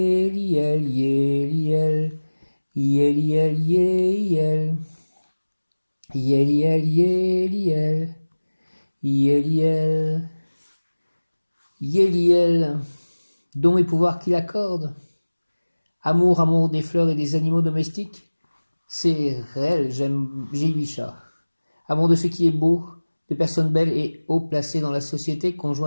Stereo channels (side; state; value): both; inverted; correlation -1.00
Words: Yéliel, Yéliel, Yéliel, Yéliel, Yéliel, Yéliel, dons et pouvoirs qu'il accorde. Amour, amour des fleurs et des animaux domestiques, c'est réel, j'ai 8 chats. Amour de ce qui est beau, de personnes belles et haut placées dans la société,